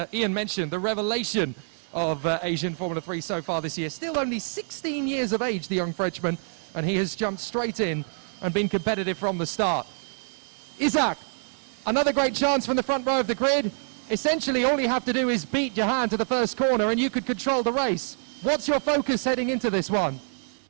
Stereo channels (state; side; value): silent; left; digital silence